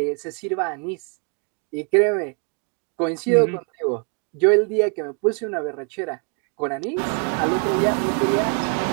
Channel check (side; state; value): left; quieter; 38.9 dB